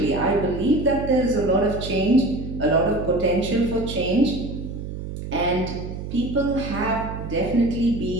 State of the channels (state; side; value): noise; right; hum, 8 dB below the sound